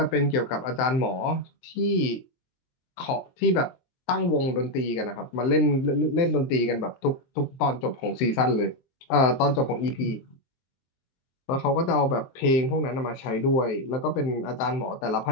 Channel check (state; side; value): late; right; 23 ms